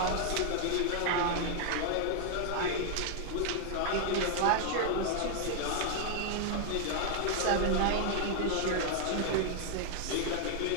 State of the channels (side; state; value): both; different; correlation 0.00